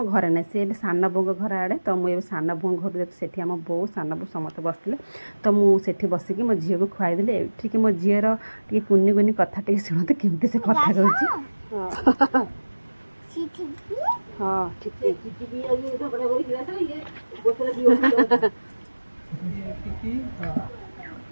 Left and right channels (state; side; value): inverted; both; correlation -1.00